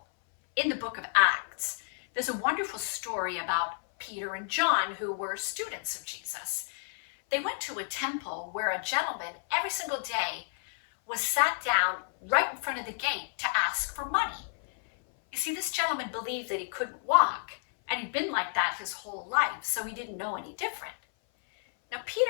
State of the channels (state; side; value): silent; right; 57 dB below the other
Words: in the book of Acts, there's a wonderful story about Peter and John, who were students of Jesus. They went to a temple where a gentleman every single day was sat down right in front of the gate to ask for money. You see, this gentleman believed that he couldn't walk, and he'd been like that his whole life, so he didn't know any different. Now,